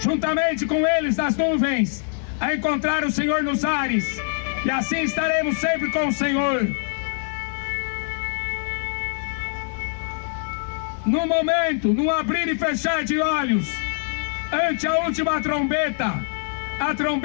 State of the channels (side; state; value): right; silent; digital silence